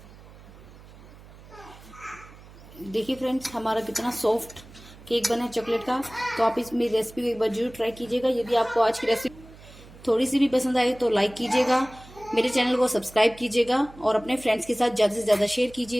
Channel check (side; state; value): right; noise; hum, 20 dB below the sound